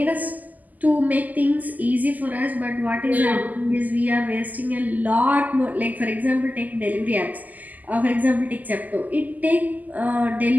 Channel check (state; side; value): late; left; 0.081 ms